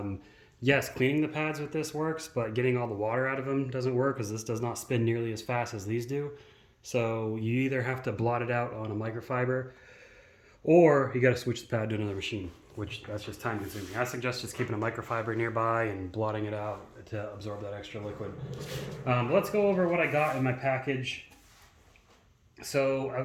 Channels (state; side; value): identical; both; correlation 1.00